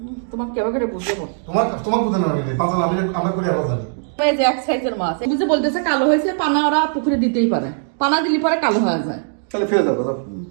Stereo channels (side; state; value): left; silent; digital silence